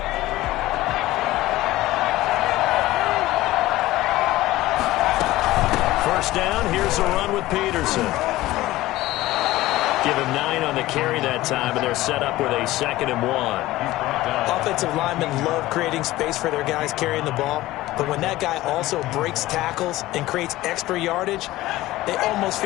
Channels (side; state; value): right; quieter; 17.0 dB